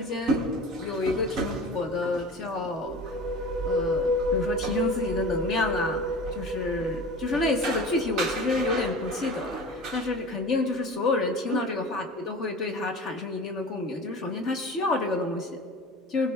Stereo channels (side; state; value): both; normal; correlation 0.36